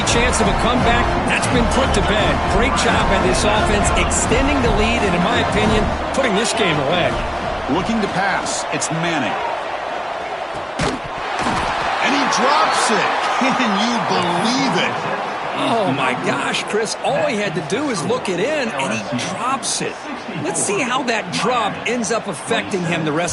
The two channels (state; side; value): identical; both; correlation 1.00